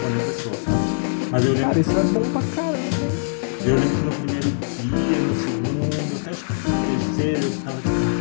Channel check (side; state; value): right; silent; 64 dB below the other